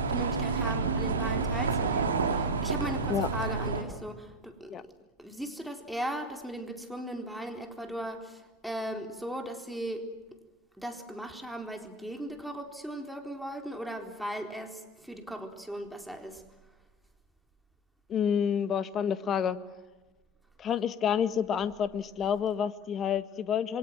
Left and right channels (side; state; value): both; normal; correlation 0.26